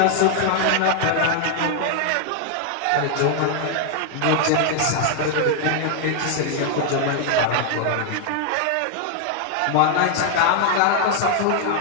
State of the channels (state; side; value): different; both; correlation 0.00